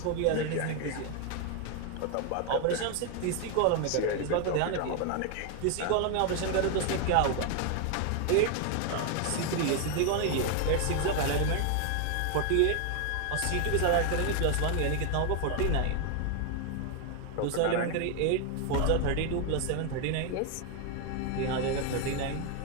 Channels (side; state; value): both; different; correlation 0.01